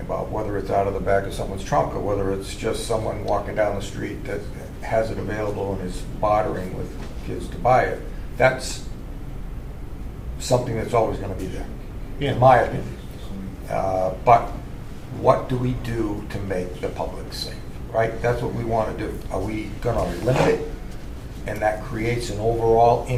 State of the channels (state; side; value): identical; both; correlation 1.00